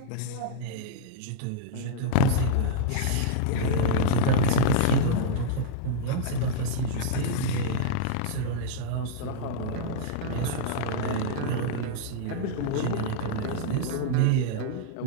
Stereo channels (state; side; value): different; both; correlation -0.02